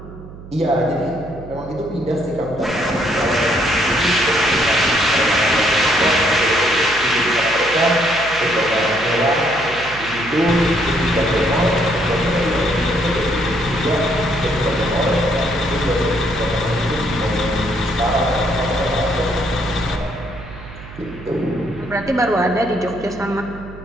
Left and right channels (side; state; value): right; noise; hum, 15 dB below the sound